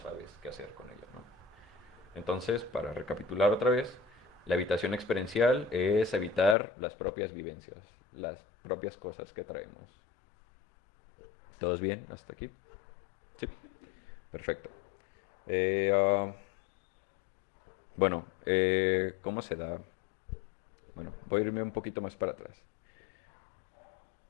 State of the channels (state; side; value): drops out; right; at 6.6 s